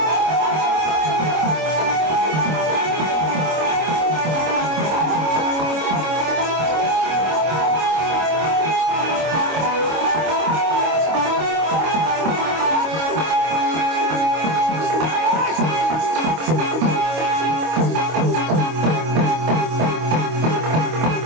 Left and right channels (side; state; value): left; late; 25 ms